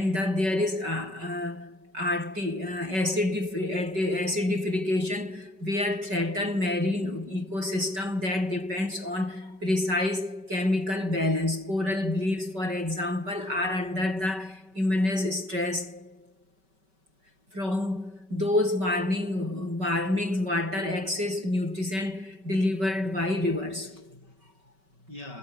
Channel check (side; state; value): left; late; 5.2 ms